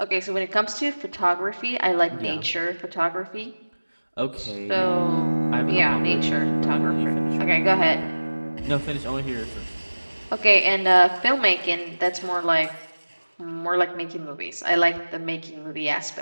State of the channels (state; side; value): inverted; both; correlation -1.00